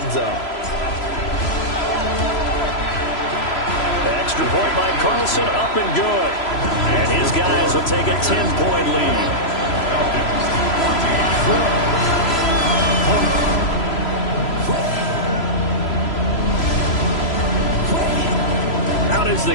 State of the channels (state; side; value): late; right; 3.0 ms